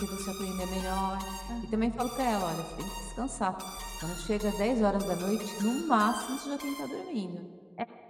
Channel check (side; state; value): both; identical; correlation 1.00